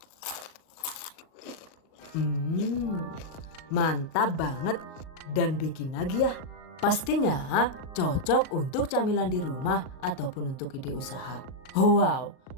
Mantap banget dan bikin lagi ya. Pastinya cocok untuk camilan di rumah ataupun untuk ide usaha. Wow,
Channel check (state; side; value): late; right; 38 ms